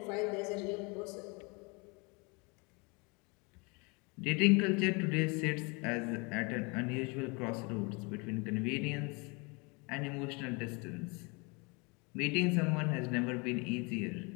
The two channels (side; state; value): right; quieter; 29.7 dB